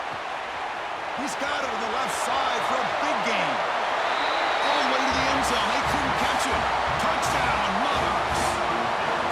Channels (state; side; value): identical; both; correlation 1.00